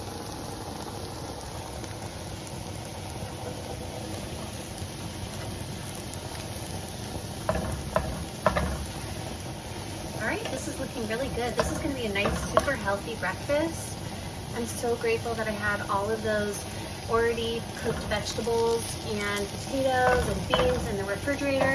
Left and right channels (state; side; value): identical; both; correlation 1.00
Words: This is looking really good. This is going to be a nice, super healthy breakfast. I'm so grateful that I had all of those already cooked vegetables and potatoes and beans in the